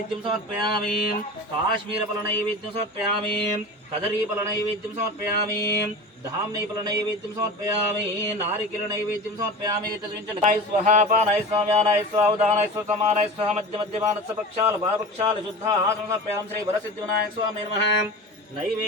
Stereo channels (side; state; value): both; normal; correlation 0.32